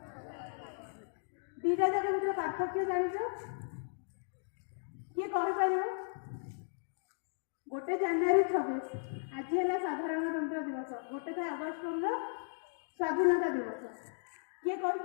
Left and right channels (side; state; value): right; silent; digital silence